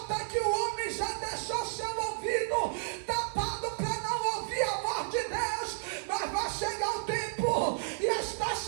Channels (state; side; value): silent; left; digital silence